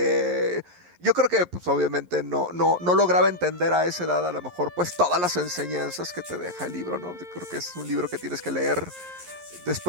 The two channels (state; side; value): late; left; 11 ms